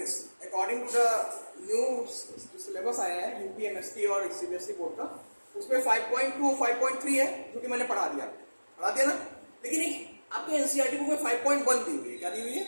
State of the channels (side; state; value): both; inverted; correlation -1.00